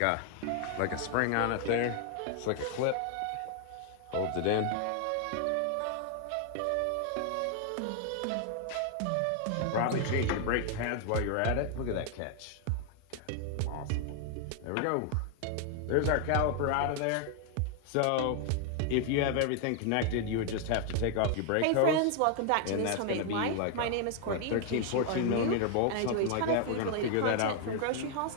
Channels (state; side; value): different; both; correlation 0.00